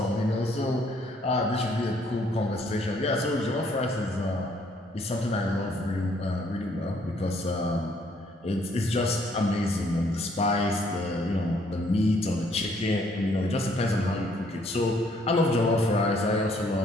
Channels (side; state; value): both; normal; correlation 0.65